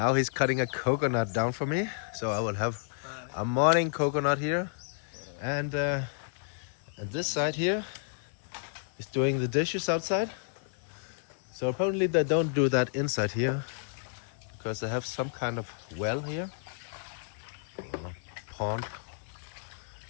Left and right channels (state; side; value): silent; right; 57 dB below the other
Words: he's cutting a coconut down for me, so I will have a morning coconut here, and this side here is doing the dishes outside. So apparently they don't do that inside here, because they have some kind of well here, or pond,